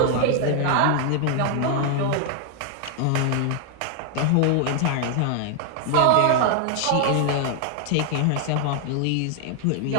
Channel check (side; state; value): both; different; correlation 0.00